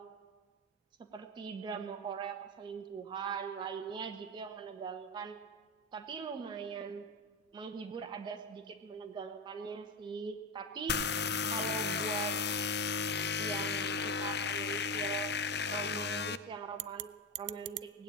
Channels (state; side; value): normal; both; correlation 0.16